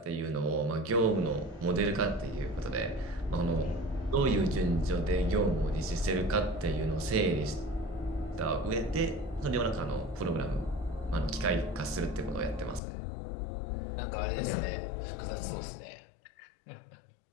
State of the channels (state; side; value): drops out; right; at 12.8 s